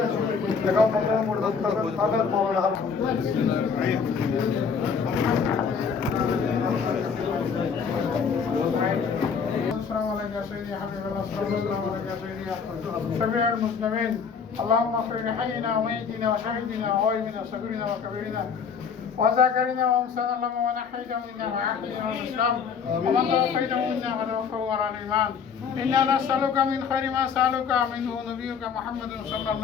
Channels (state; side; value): quieter; right; 6.2 dB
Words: এখন আগাত মৌলানা السلام عليك يا سيدي يا حبيب الله، السلام عليك يا سيدي يا شفيع المسلمين. اللهم اغفر لحينا وميتنا وشهيدنا وغائبنا وصغيرنا وكبيرنا وذاكرنا وانسانا لما ونحيته منا وعافينا والاسلام ومن توفيته منا وتوفه على الايمان. انا نسالك من خير ما سالك منه نبيك محمد صلى